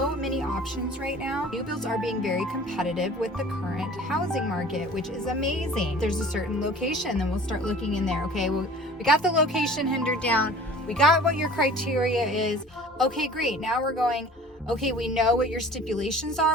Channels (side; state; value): both; normal; correlation 0.46